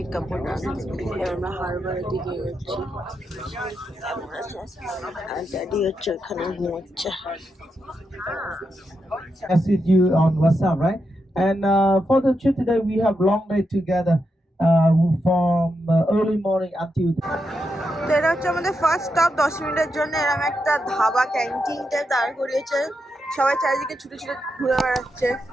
এবার আমরা হারবারের দিকে যাচ্ছি, আর ড্যাডি হচ্ছে ওখানে ঘুমোচ্ছে। Message you on WhatsApp, right? And for the trip today, we have long day together from early morning until. তো এটা হচ্ছে আমাদের ফার্স্ট স্টপ। 10 মিনিটের জন্য এরকম একটা ধাবা ক্যান্টিনটা দাঁড় করিয়েছে, সবাই চারিদিকে ছুটে ছুটে ঘুরে বেড়াচ্ছে।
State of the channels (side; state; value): both; normal; correlation 0.85